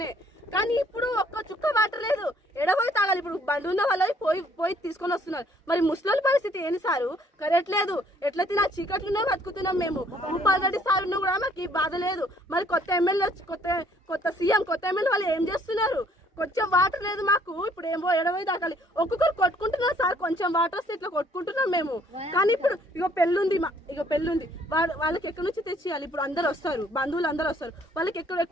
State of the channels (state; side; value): normal; both; correlation 0.63